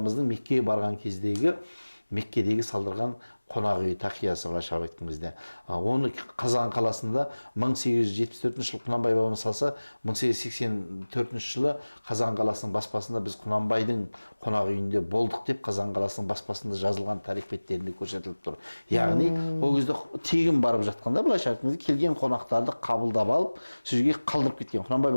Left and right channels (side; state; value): both; inverted; correlation -1.00